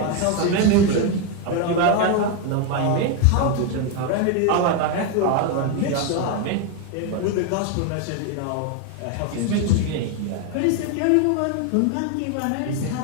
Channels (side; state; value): both; different; correlation 0.01